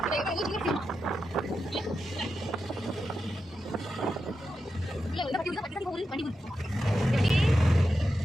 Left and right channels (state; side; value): normal; both; correlation 0.89